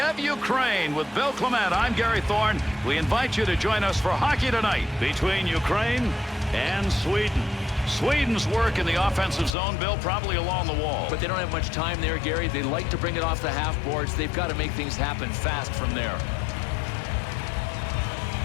Ukraine. With Bill Clement, I'm Gary Thorne. We invite you to join us for Hockey Tonight between Ukraine and Sweden. Sweden's work in the offensive zone, Bill, probably along the wall. But they don't have much time there, Gary. They like to bring it off the half boards. They've got to make things happen fast from there.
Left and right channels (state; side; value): drops out; right; at 9.6 s